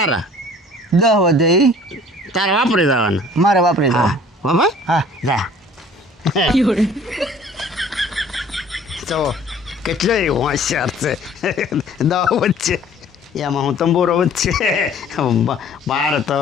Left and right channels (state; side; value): normal; both; correlation 0.51